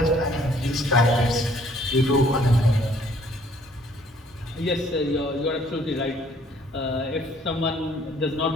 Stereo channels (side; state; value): both; normal; correlation 0.61